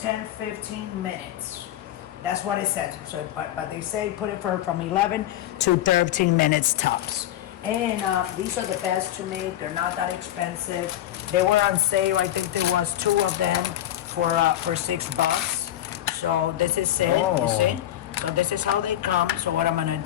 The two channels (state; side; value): quieter; right; 12.8 dB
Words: minutes. That's what it says. So, but they say put it from 11 to 13 minutes tops. And these are the best to make. They're not that expensive. They were on sale. I think there was 2 of them for $6. So this is it. You see? So this is how they come. So what I'm gonna